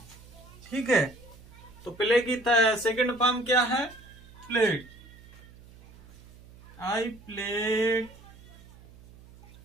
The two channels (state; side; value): noise; right; hum, 22 dB below the sound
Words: ठीक है, तो प्ले की सेकंड फॉर्म क्या है? Played. I played